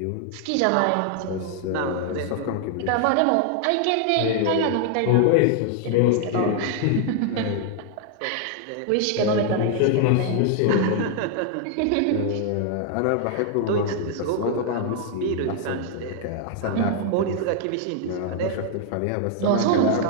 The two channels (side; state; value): both; different; correlation 0.00